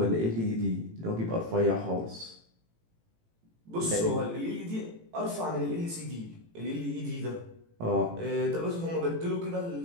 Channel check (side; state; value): left; late; 18 ms